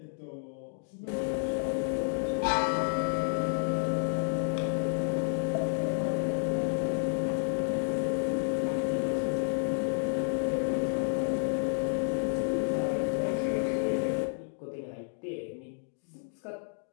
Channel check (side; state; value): right; silent; digital silence